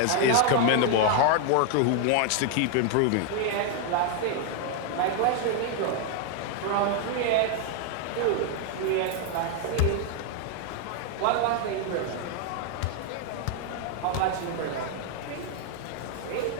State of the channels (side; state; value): both; different; correlation 0.00